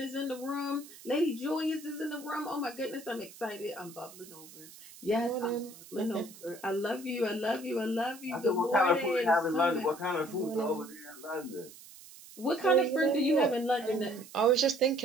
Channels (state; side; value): noise; right; hiss, 19 dB below the sound